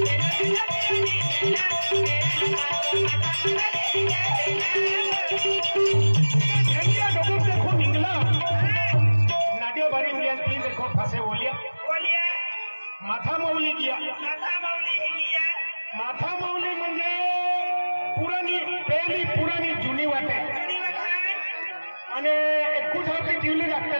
कुछ आपली दिवली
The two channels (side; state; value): both; inverted; correlation -1.00